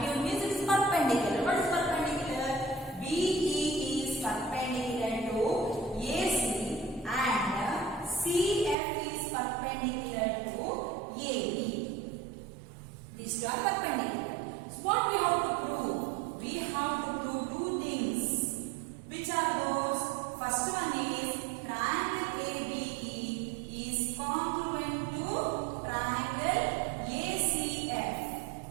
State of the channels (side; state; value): left; drops out; at 8.8 s